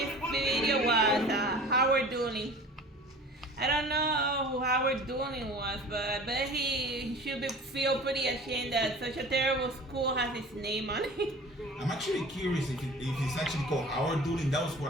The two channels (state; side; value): normal; both; correlation 0.42